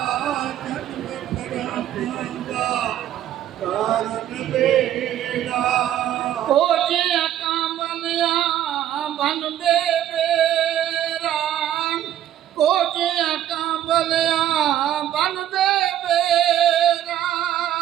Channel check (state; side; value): quieter; left; 11.6 dB